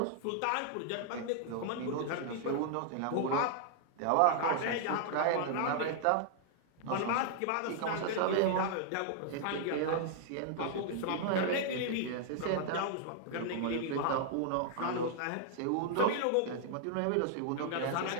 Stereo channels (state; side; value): different; both; correlation -0.01